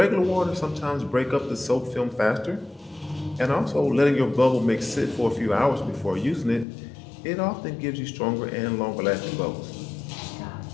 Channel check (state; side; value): drops out; right; at 6.7 s